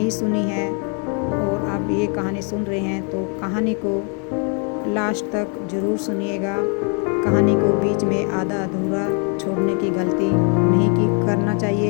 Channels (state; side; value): quieter; right; 38.4 dB